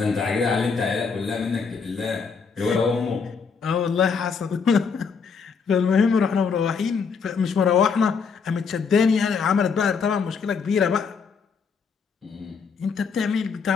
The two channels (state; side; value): quieter; right; 5.6 dB